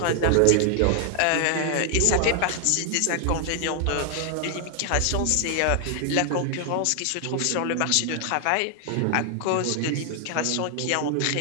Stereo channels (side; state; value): both; different; correlation 0.00